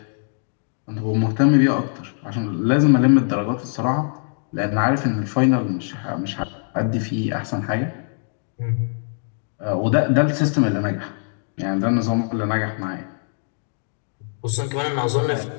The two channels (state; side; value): silent; right; digital silence